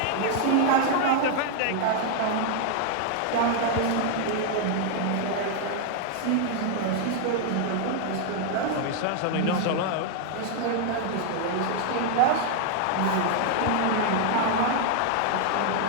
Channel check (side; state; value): both; different; correlation 0.00